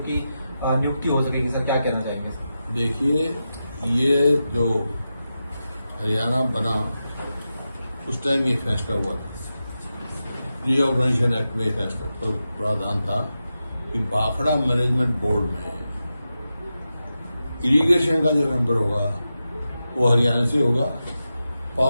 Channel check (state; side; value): inverted; both; correlation -0.91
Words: की नियुक्ति हो सकेगी। सर, क्या कहना चाहेंगे? देखिए, ये जो हरियाणा बना उस टाइम ये फैसला हुआ था, रीऑर्गेनाइजेशन एक्ट में फैसला प्रावधान था कि भाखड़ा मैनेजमेंट बोर्ड में इरिगेशन का जो मेंबर होगा वो हरियाणा से होगा,